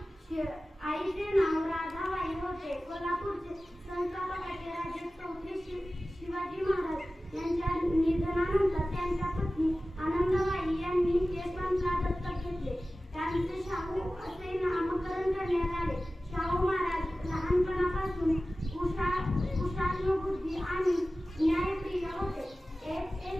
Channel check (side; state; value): both; normal; correlation 0.96